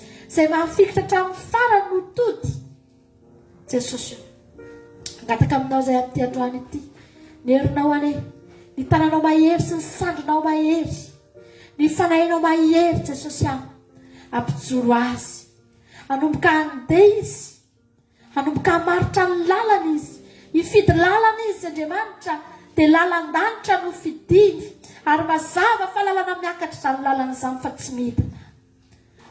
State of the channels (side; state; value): both; identical; correlation 1.00